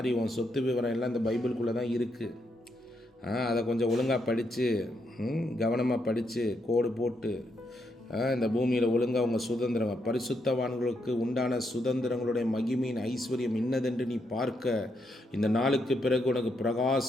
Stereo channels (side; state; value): both; normal; correlation 0.79